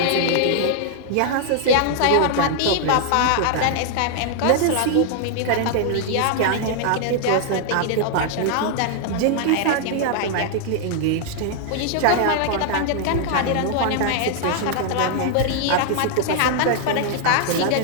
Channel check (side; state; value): both; different; correlation 0.00